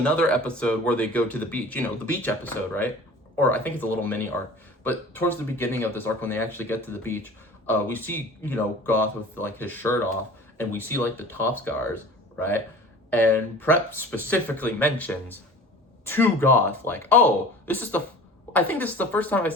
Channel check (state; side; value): normal; both; correlation 0.42